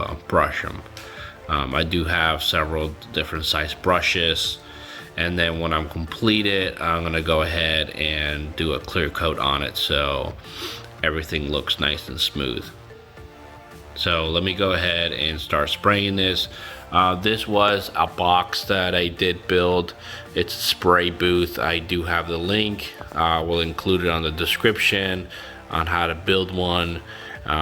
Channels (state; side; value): identical; both; correlation 1.00